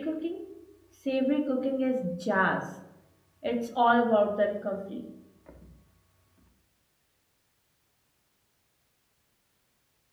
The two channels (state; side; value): identical; both; correlation 1.00